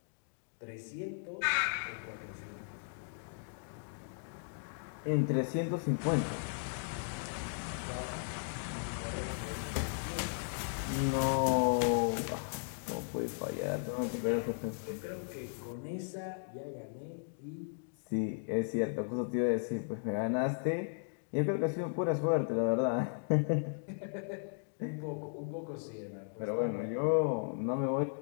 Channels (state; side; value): silent; right; digital silence